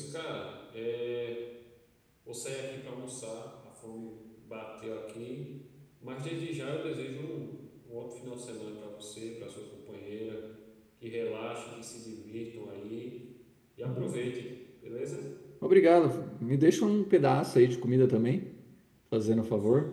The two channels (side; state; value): both; identical; correlation 1.00